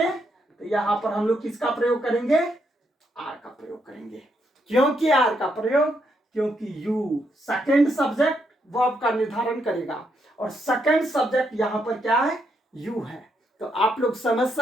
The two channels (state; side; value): normal; both; correlation 0.78